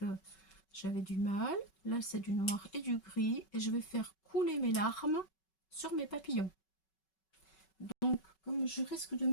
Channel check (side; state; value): right; late; 5.3 ms